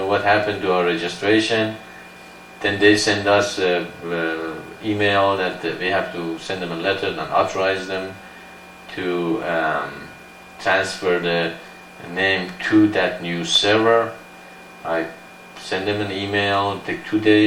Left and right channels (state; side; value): identical; both; correlation 1.00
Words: what happened to our registration. Then they send us an email that we have to send them a letter and authorize them to transfer the name to that new server. I sent them an email, it took 2